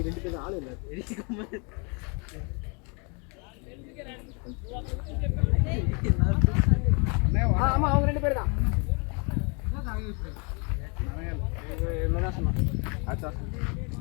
ரெண்டு பேரும் ஆளு இல்ல ஆமா அவங்க ரெண்டு பேர் தான் என்ன சொன்னா அச்சா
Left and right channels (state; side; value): quieter; right; 33.6 dB